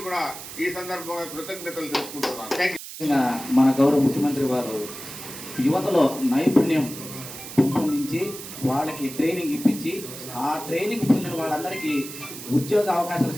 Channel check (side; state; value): right; noise; hiss, 12 dB below the sound